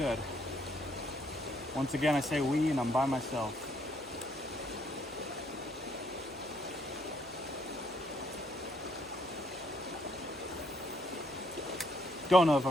Once again, I say we, and I'm by myself. Don't know if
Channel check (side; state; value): right; noise; hum, 25 dB below the sound